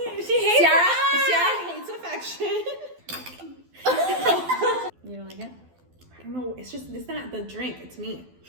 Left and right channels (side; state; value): left; late; 12 ms